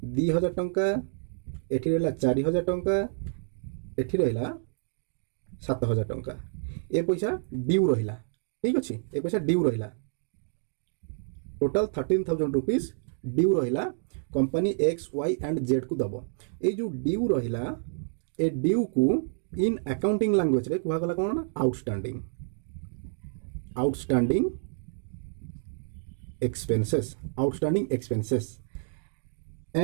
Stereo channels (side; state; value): left; silent; digital silence